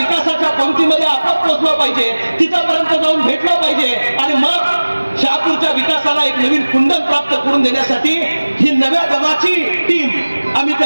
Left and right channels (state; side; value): inverted; both; correlation -1.00